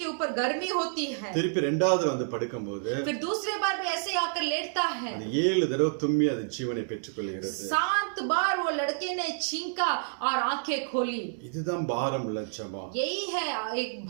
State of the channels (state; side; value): silent; left; digital silence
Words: ऊपर गर्मी होती है. திருப்பி இரண்டாவது வந்து படுக்கும்போது फिर दूसरी बार भी ऐसे आकर लेटता है. அது 7 தடவை தும்மி அது ஜீவனை பெற்றுக்கொள்கிறது. 7 बार वो लड़के ने छींका और आंखें खोली. இதுதான் பாரம் உள்ள ஜெபம். यही है एक